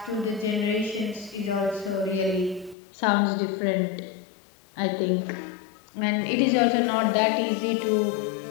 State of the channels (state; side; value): drops out; right; at 2.8 s